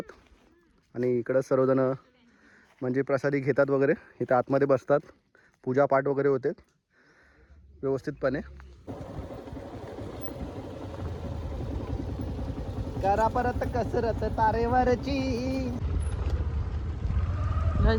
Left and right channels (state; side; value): identical; both; correlation 1.00